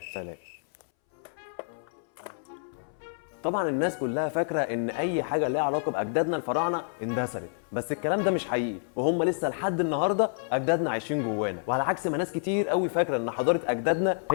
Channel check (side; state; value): right; silent; 59 dB below the other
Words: سلام. طبعا الناس كلها فاكره ان اي حاجه ليها علاقه باجدادنا الفراعنه اندثرت، بس الكلام ده مش حقيقي، وهم لسه لحد النهارده اجدادنا عايشين جوانا، وعلى عكس ما ناس كتير قوي فاكره ان حضاره اجدادنا